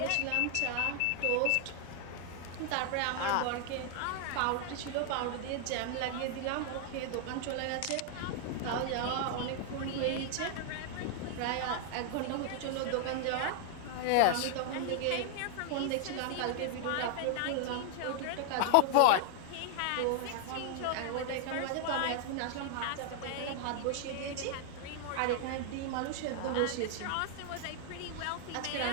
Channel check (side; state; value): both; different; correlation 0.00